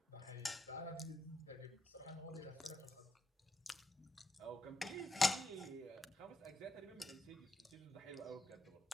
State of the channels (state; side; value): normal; both; correlation 0.83